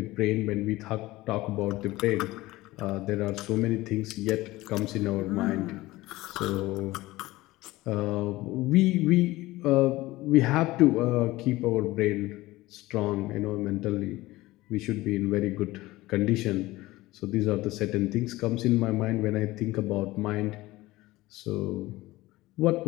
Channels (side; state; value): right; quieter; 18.7 dB